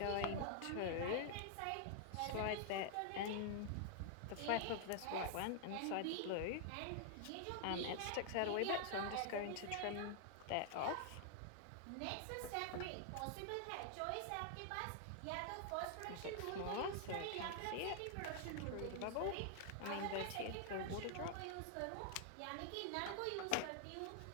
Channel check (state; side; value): different; both; correlation 0.00